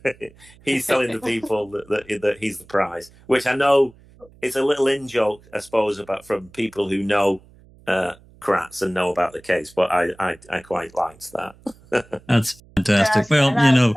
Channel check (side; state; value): right; noise; hum, 26 dB below the sound